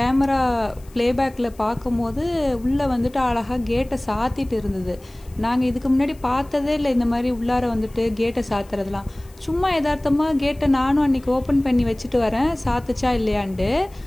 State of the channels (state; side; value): noise; left; hiss, 27 dB below the sound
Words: ப்ளேபேக்கில் பார்க்கும்போது உள்ளே வந்துட்டு அழகாக கேட்டை சாத்திட்டு இருந்தது. நாங்கள் இதுக்கு முன்னாடி பார்த்ததே இல்லை இந்த மாதிரி உள்ளார வந்துட்டு கேட்டை சாத்துறதுலாம். சும்மா யதார்த்தமாக கேட்டை நானும் அன்றைக்கி ஓப்பன் பண்ணி வச்சுட்டு வரேன், சாத்துச்சா இல்லையான்ட்டு.